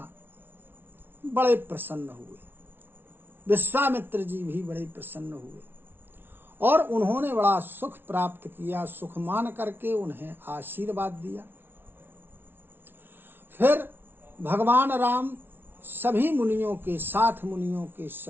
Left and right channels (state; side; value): late; left; 0.11 ms